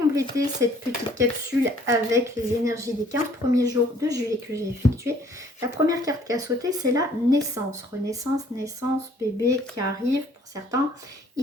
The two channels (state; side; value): normal; both; correlation 0.59